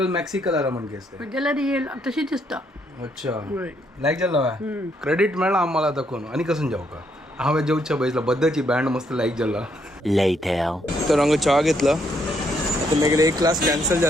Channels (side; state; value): both; normal; correlation 0.73